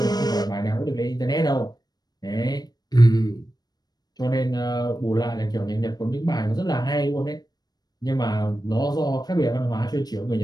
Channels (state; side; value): late; right; 0.19 ms